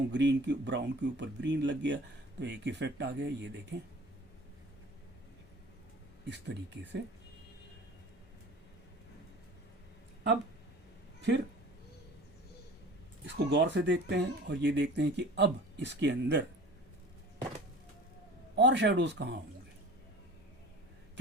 ग्रीन की ब्राउन के ऊपर ग्रीन लग गया तो एक इफेक्ट आ गया। ये देखें, इस तरीके से। अब फिर इसको गौर से देखते हैं और ये देखते हैं कि अब इसके अंदर और शेडोज कहाँ होंगे,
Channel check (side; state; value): both; normal; correlation 0.42